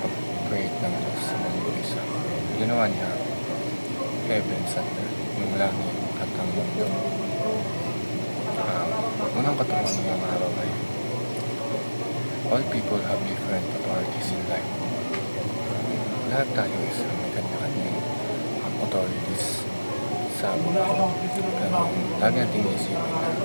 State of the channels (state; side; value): inverted; both; correlation -1.00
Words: ng Diyos sa mundo isa. Ginawa niya heavens and earth, yung langit at ang mundo. Unang katuruan ng araw ay all people have different authorities in life. Lahat tayo is may kanya-kanyang authorities sa buhay. Pero lagi natin isipin na